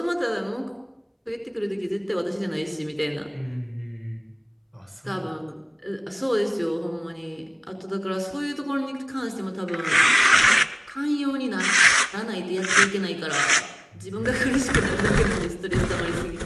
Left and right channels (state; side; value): identical; both; correlation 1.00